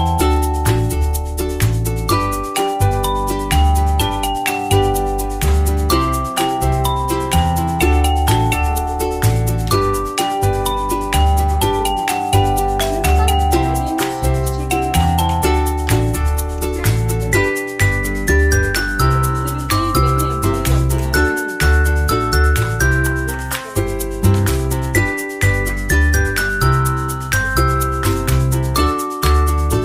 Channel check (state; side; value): identical; both; correlation 1.00